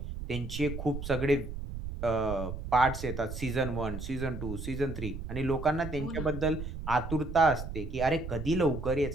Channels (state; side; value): noise; right; rumble, 7 dB below the sound